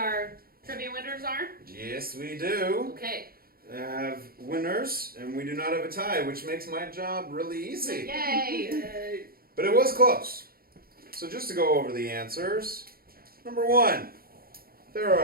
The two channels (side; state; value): left; late; 0.43 ms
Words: trivia winners are? Yes, we do. Okay. Have winners, and we do not have a tie, which makes my job really easy. Yay! But it was close. So just to go over the answers. Number 1. There